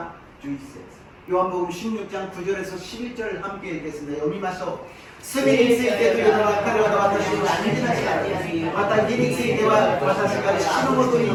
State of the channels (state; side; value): identical; both; correlation 1.00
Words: 11節 요한복음 16장 9절에서 11절 함께 읽겠습니다. 読みましょう。すべてについてというのは彼らが私を信じなかった。また義については私が父のもとに